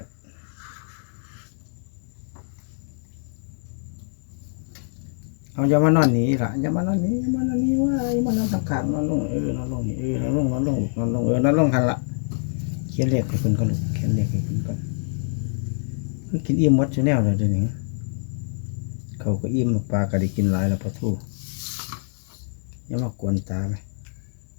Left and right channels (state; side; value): silent; right; 62 dB below the other